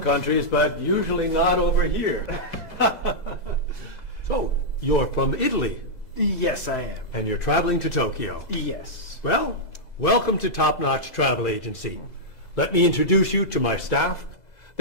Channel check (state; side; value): late; right; 2.0 ms